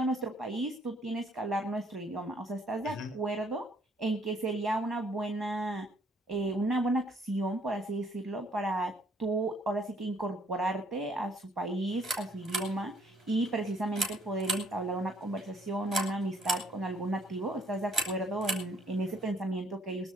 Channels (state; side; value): normal; both; correlation 0.64